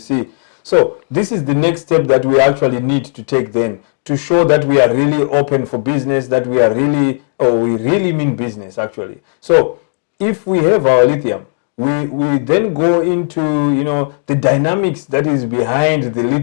So this is the next step that we actually need to take then, to show that we are really open for business, that we are really, we really mean business actually. So if we have our lithium, we then go into, you know, the dynamics that is behind the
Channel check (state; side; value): silent; right; 60 dB below the other